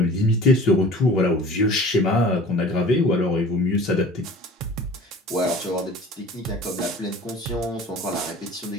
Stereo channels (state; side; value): normal; both; correlation 0.43